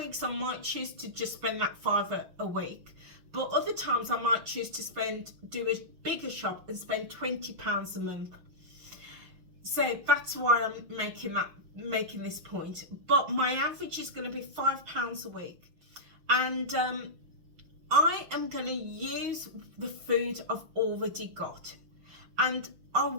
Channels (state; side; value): late; left; 6.2 ms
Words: I might choose to just spend that £5 a week, but other times I might choose to do a bigger shop and spend £20 a month. So that's why I'm making this point. But my average is going to be £5 a week, and I am going to use the food I've already got, and I